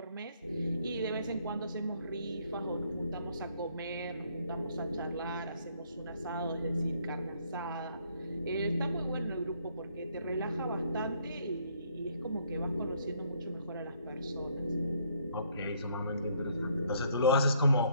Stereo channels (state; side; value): inverted; both; correlation -0.67